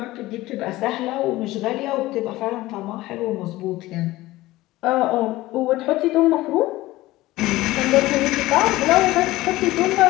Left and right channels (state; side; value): quieter; right; 17.8 dB